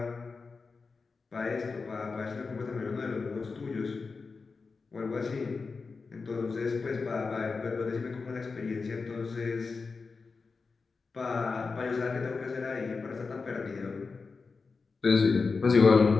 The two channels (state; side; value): quieter; right; 4.5 dB